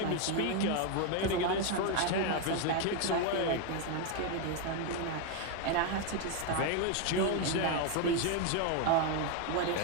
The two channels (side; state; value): both; different; correlation 0.01